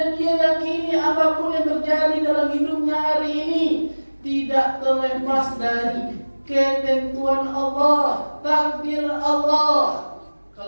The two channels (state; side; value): inverted; both; correlation -1.00